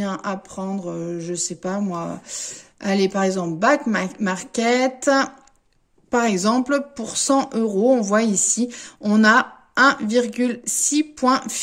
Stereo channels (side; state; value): both; identical; correlation 1.00